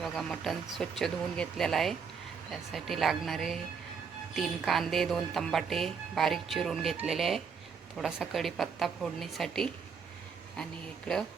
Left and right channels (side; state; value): left; quieter; 6.1 dB